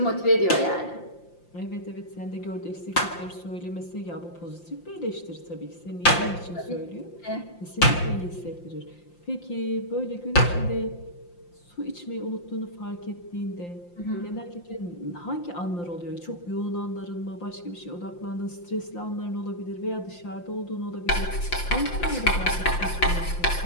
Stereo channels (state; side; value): late; right; 5.8 ms